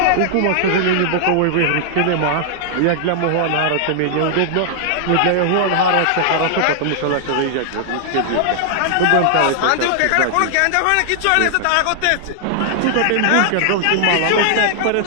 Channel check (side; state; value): both; different; correlation -0.01